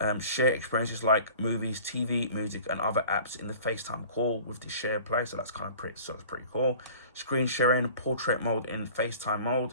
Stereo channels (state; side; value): inverted; both; correlation -0.45